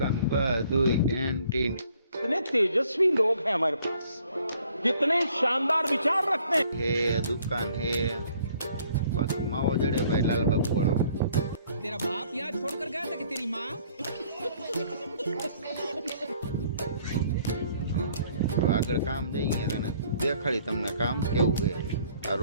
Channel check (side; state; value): both; inverted; correlation -0.61